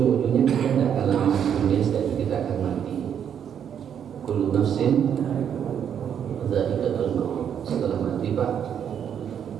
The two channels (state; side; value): quieter; left; 8.6 dB